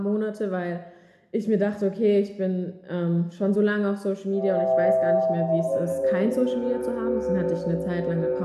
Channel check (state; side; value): identical; both; correlation 1.00